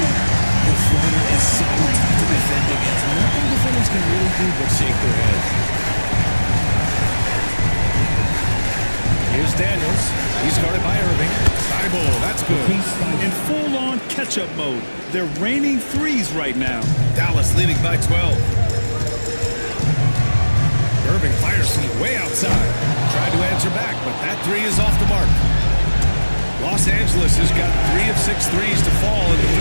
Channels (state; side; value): inverted; both; correlation -1.00